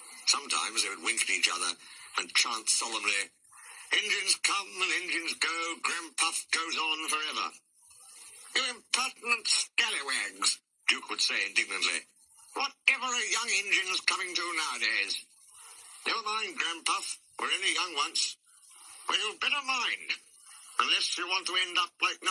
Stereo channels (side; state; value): both; identical; correlation 1.00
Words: Sometimes they would wink at each other and chant solemnly, "Engines come and engines go, Grandpuff goes on forever." "You impertinent scallywags," Duke would say indignantly. "Whatever are young engines coming to nowadays? Never mind, Grandpuff, we're only young once. Well, you'd better mind, unless you want to end up like